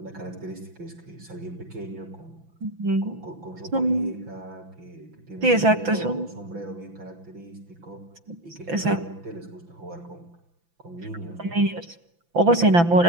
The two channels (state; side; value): late; left; 5.9 ms